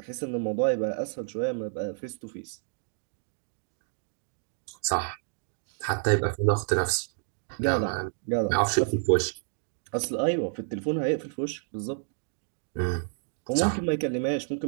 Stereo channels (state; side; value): silent; left; digital silence